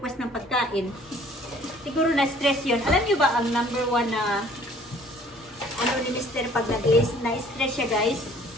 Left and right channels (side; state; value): both; normal; correlation 0.55